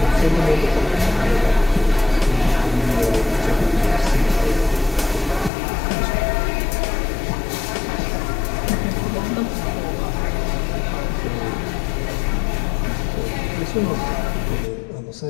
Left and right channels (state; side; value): drops out; right; at 5.5 s